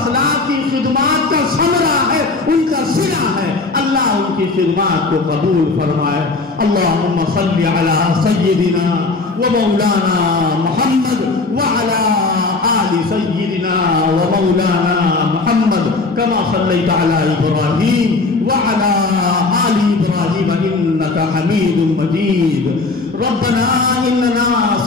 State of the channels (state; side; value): quieter; right; 3.7 dB